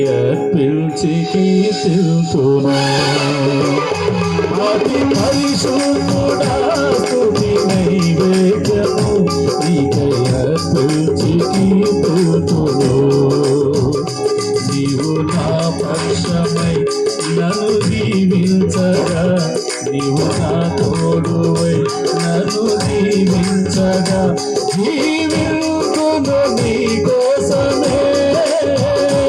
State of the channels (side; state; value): both; identical; correlation 1.00